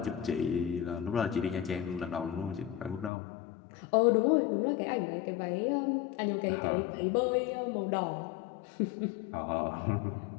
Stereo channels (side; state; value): right; drops out; at 3.1 s